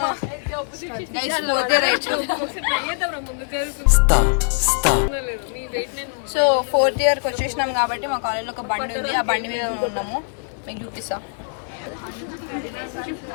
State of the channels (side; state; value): right; silent; digital silence